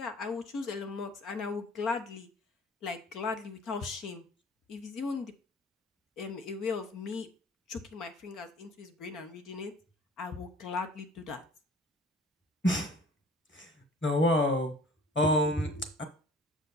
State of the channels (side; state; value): both; normal; correlation 0.49